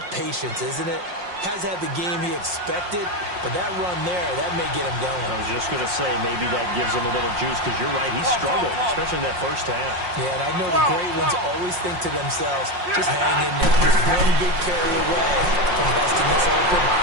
patience, isn't it? Has had the game he expected, but that run there, that may get him going. I was just going to say, maybe that gives him a little juice, because you're right, he struggled, especially in that first half. Yeah, and I know the great ones always think to themselves, just hang in there. Just one big carry away from busting this open.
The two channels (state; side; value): late; left; 5.6 ms